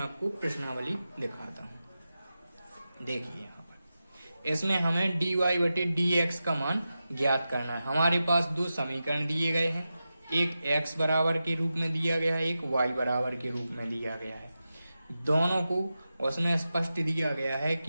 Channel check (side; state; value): both; inverted; correlation -0.92